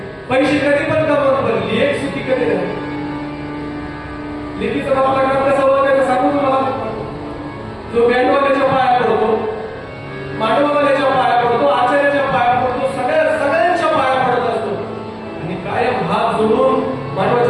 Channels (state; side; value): identical; both; correlation 1.00